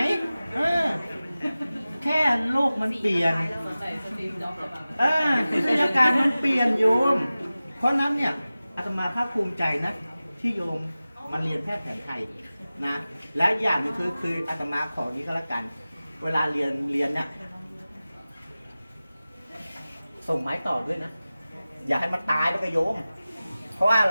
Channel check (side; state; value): both; inverted; correlation -0.96